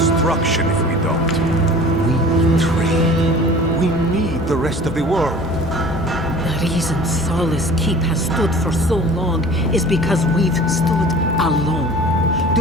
if we don't. We trade. We need the rest of the world. The reason Solace Keep has stood for so long is because we've stood alone.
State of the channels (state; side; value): normal; both; correlation 0.43